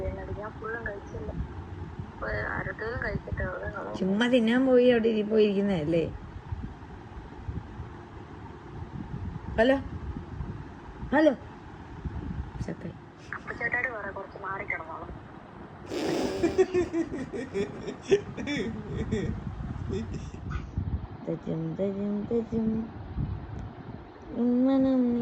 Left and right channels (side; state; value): both; identical; correlation 1.00